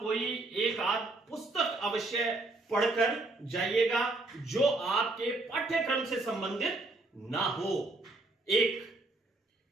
एक आध पुस्तक अवश्य पढ़कर जाइएगा जो आपके पाठ्यक्रम से संबंधित ना हो। एक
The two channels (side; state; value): left; quieter; 3.0 dB